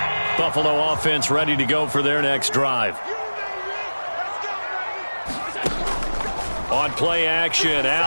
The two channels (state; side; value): inverted; both; correlation -1.00